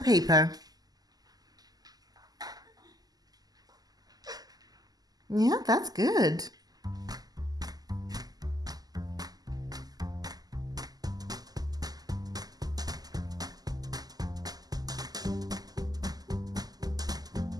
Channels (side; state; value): left; late; 0.18 ms